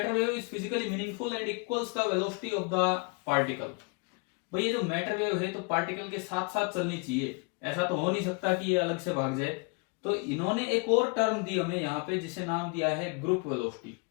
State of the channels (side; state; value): right; quieter; 33.1 dB